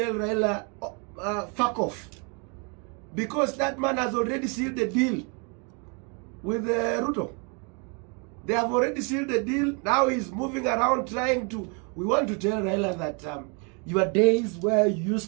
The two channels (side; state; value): left; quieter; 35.2 dB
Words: Raila, fuck off, because that man has already sealed the deal with Ruto. They have already sealed the deal. Now he's moving around trying to... We want to tell Raila that your days where you